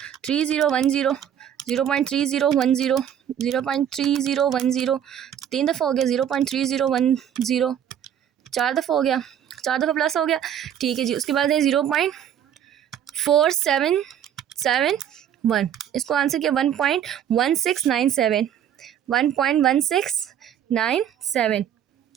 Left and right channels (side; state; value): left; quieter; 9.7 dB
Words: 3010, 0.3010, 0.3010, 3 दफ़ा हो गया, 0.3010, 4 दफ़ा हो गया, 4 दफ़ा प्लस हो गया, ठीक है जी। उसके बाद है 0.4771, इसको आंसर किया 1.1697, 1.1697।